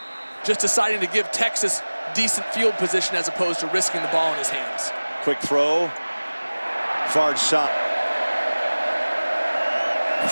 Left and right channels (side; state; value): both; inverted; correlation -1.00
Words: Just deciding to give Texas decent field position as opposed to risking the ball in his hands. Quick throw. Far side.